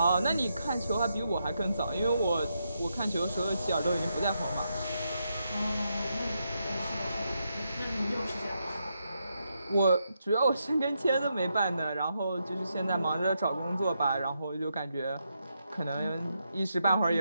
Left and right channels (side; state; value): both; inverted; correlation -0.82